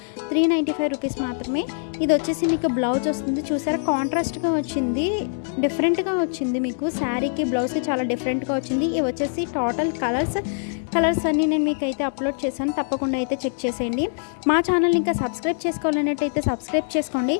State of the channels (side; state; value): right; silent; digital silence